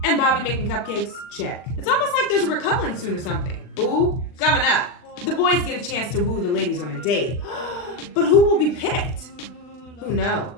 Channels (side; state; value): right; late; 39 ms